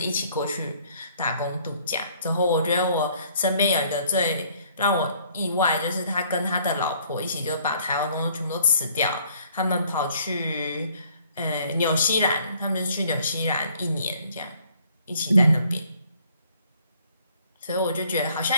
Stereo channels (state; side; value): inverted; both; correlation -0.61